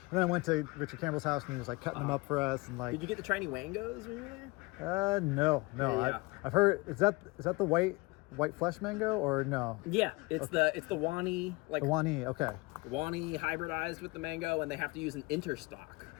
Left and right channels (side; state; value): right; quieter; 24.9 dB